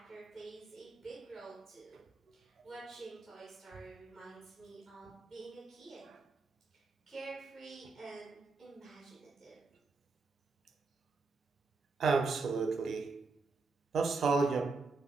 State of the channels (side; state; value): left; quieter; 4.0 dB